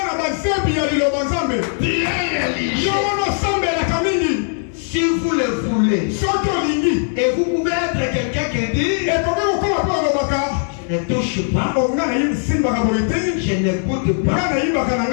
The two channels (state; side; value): silent; right; 56 dB below the other